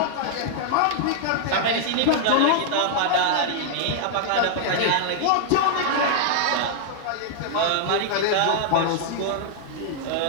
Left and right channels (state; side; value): different; both; correlation -0.01